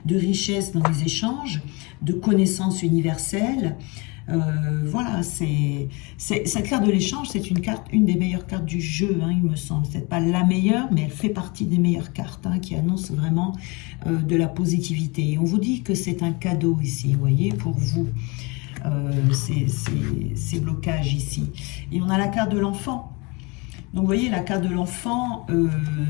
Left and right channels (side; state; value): right; quieter; 28.0 dB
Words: de richesse dans les échanges, de connaissance universelle. Voilà, cette carte de l'échange, c'est une des meilleures cartes du jeu, hein, il me semble. C'est pas la meilleure, mais elle fait partie des meilleures cartes hein, qui annoncent vraiment de la positivité. Et on vous dit que c'est un cadeau ici, vous voyez, pour vous. Ces blocages ici. Et on a la carte de l'enfant. Donc vous voyez, la carte de l'enfant